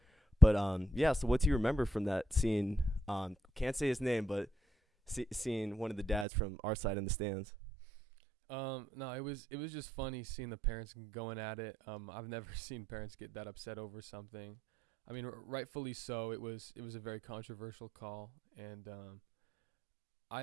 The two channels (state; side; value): drops out; left; at 6.2 s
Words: But yeah. So what do you remember from that scene? Can't say his name, but seeing one of the dads from our side in the stands. No, it was just funny seeing the parents going at it. I've never seen parents get that upset over something. I mean, rightfully so. It was a very controversial call, and